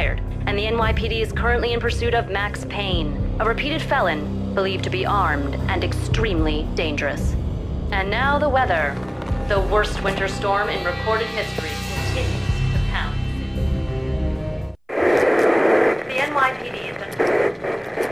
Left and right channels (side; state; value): both; identical; correlation 1.00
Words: and the NYPD is currently in pursuit of Max Payne, a repeated felon believed to be armed and extremely dangerous. And now the weather. The worst winter storm in recorded history continues to pound. The NYPD has